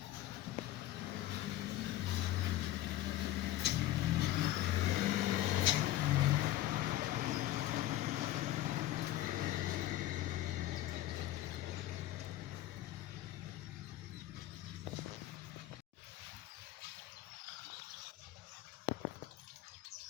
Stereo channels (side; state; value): right; quieter; 14.3 dB